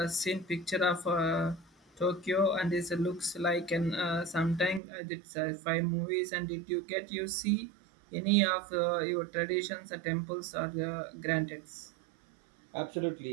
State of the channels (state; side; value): drops out; left; at 4.8 s